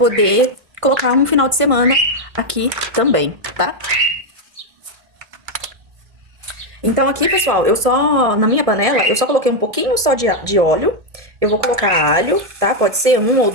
colocar um final de semana aqui também, tá? Então aqui, pessoal, na minha panela, eu só coloquei um pouquinho só de óleo. Eu vou colocar alho, tá? Pode ser 1 ou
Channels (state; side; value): late; left; 1.7 ms